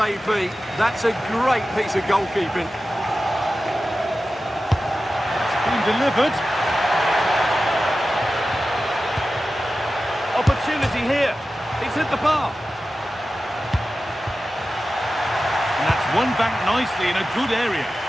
be? That's a great piece of goalkeeping. It's been delivered. Opportunity here. He's hit the bar. And that's won back nicely in a good area.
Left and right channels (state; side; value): normal; both; correlation 0.94